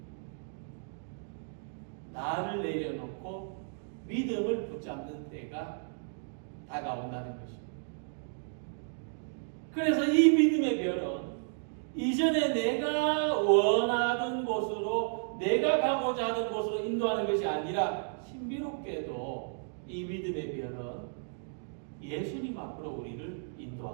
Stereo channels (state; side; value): silent; left; digital silence